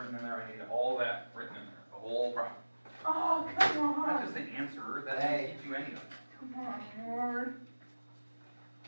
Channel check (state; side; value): inverted; both; correlation -1.00